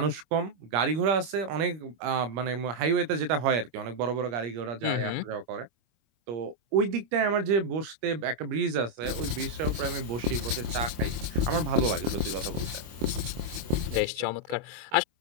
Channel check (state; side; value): late; left; 25 ms